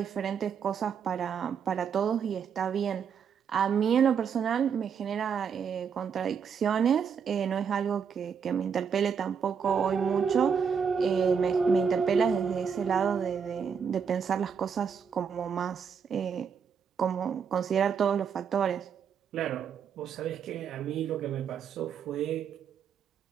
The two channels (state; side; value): quieter; left; 6.8 dB